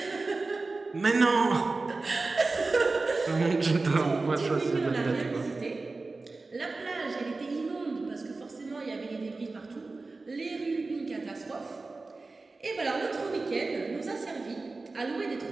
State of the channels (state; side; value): quieter; left; 3.6 dB